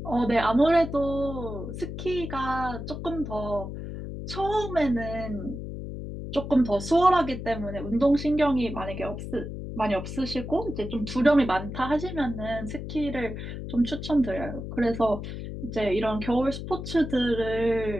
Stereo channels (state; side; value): noise; left; hum, 7 dB below the sound